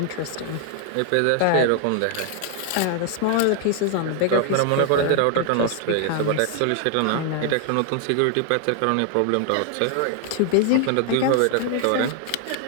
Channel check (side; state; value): both; different; correlation 0.00